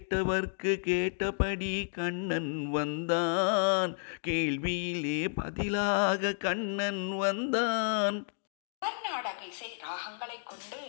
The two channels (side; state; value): right; silent; digital silence